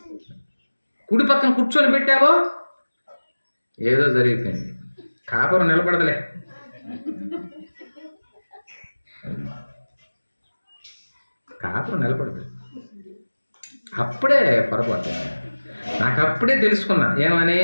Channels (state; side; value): inverted; both; correlation -1.00